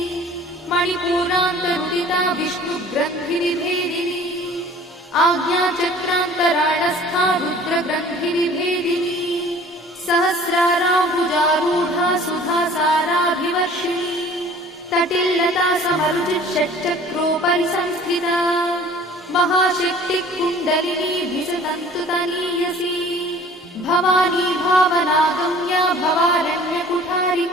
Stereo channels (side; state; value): both; normal; correlation 0.48